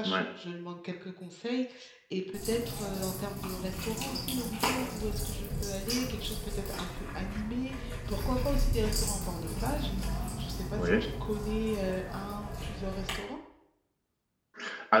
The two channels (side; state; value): both; identical; correlation 1.00